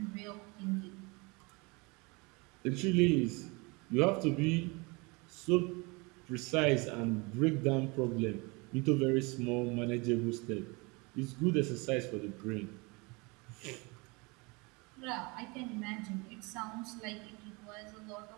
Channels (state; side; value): quieter; left; 27.6 dB